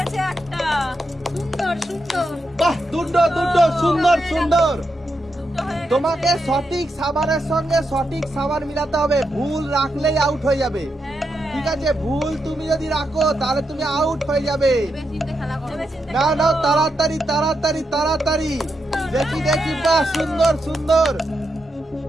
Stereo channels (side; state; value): both; normal; correlation 0.84